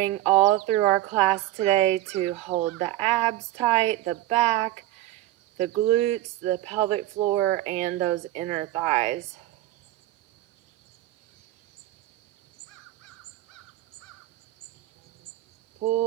all through our class today to hold the abs tight, the back, the glutes, the pelvic floor, and those inner thighs.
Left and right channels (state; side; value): quieter; left; 15.5 dB